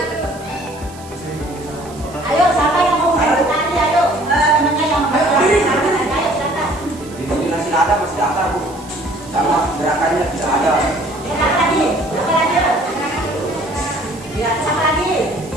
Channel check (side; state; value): right; noise; hiss, 21 dB below the sound